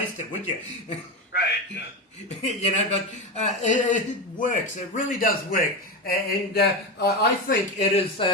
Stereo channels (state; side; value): normal; both; correlation 0.17